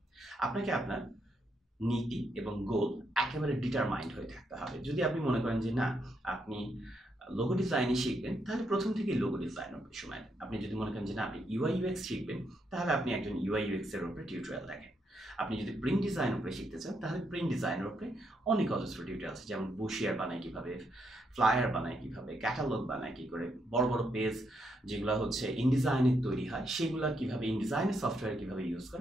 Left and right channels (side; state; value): both; normal; correlation 0.78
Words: আপনাকে আপনার নীতি এবং গোল একেবারে ডিটারমাইন্ড হয়ে থাকতে হবে। যদি আপনি মনে করেন যে না, আপনি লোগো ডিজাইনই শিখবেন, তাহলে প্রথম থেকেই লোগো ডিজাইন উপরে সময় দেন। আপনি যদি মনে করেন যে না, আপনি ইউআই ইউএক্স শিখবেন, তাহলে আপনি একজন ইউআই ইউএক্স এর উপরে টিউটোরিয়াল দেখেন। আপনি যদি প্রিন্ট ডিজাইন উপরে শিখতে চান, তাহলে প্রিন্ট ডিজাইনের উপরে অনেক অজস্র টিউটোরিয়াল আছে, যেমন বুশিয়ার বানায় কিভাবে, ফ্লায়ার বানায় কিভাবে, ক্যাটালগ বানায় কি করে, বড় বড় পেজ যেগুলো হচ্ছে ইনডিজাইনের তৈরি হয়, সেগুলো কিভাবে ইনডিজাইনের সফটওয়্যার কিভাবে ইউজ